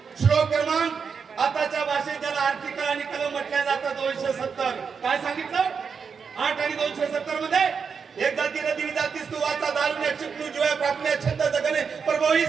श्लोक क्रमांक, आताच्या भाषेत ज्याला आर्टिकल आणि कलम म्हटलं जातं 270. काय सांगितलं? 8 आणि 270 मध्ये एक जाती नदी जातीस तू वाचा दारुण्या चिपणू जीवा प्राप्त छंद जगणे प्रभोईस.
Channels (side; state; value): left; quieter; 6.0 dB